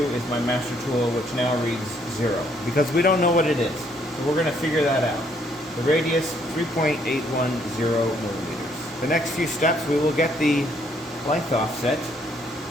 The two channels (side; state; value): both; normal; correlation 0.68